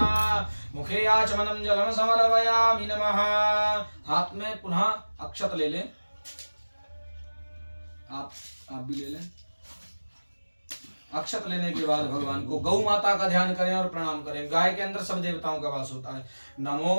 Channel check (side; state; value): both; inverted; correlation -1.00